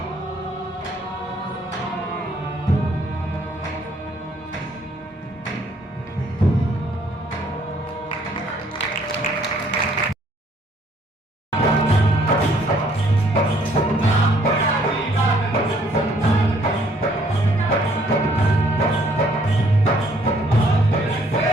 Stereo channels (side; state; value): both; normal; correlation 0.64